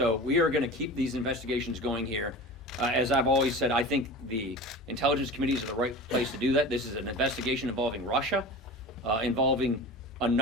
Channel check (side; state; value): both; normal; correlation 0.34